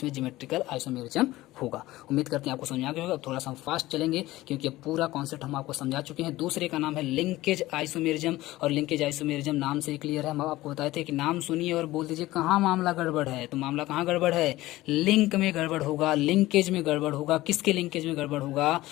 ज्योमेट्रिकल आइसोमेरिज्म होगा। उम्मीद करते हैं आपको समझ आ गया होगा। थोड़ा सा हम फास्ट चलेंगे क्योंकि अब पूरा कॉन्सेप्ट हम आपको समझा चुके हैं। दूसरे का नाम है लिंकेज आइसोमेरिज्म, और लिंकेज आइसोमेरिज्म नाम से ही क्लियर है। हम आपको बताए थे कि नाम सुनिए और बोल दीजिए कहाँ मामला गड़बड़ है। तो मामला कहाँ गड़बड़ है? लिंक में गड़बड़ होगा, लिंकेज में गड़बड़ होगा। किसके लिंकेज में गड़बड़ होगा?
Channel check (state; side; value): quieter; right; 17.4 dB